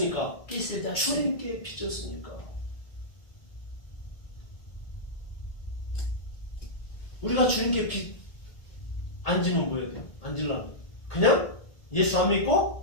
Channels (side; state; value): right; late; 1.8 ms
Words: 빚을 졌어요. 주님께 빚졌으니까. 우리가 주님께 빚 안 지면 뭐 해야 돼요? 안 질라면 그냥 예수 안